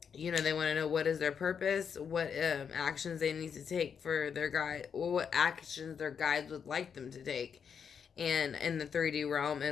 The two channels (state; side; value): quieter; right; 7.0 dB